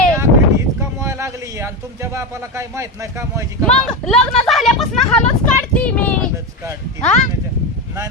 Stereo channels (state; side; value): normal; both; correlation 0.15